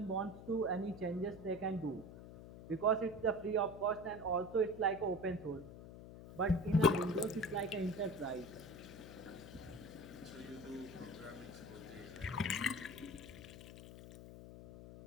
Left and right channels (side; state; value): left; noise; hum, 13 dB below the sound